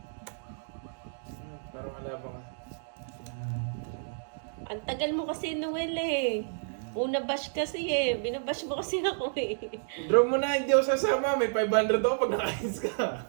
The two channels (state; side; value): silent; left; digital silence